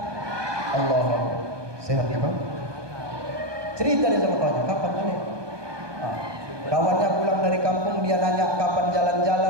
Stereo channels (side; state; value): left; late; 1.2 ms